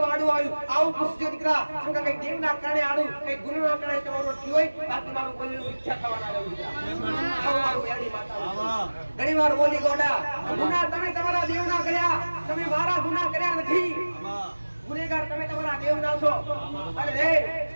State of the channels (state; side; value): inverted; both; correlation -1.00